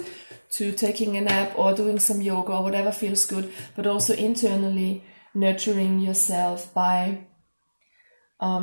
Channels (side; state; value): both; inverted; correlation -1.00